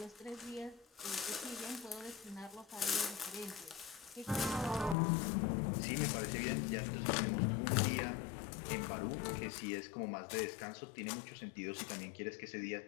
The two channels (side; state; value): right; drops out; at 5.0 s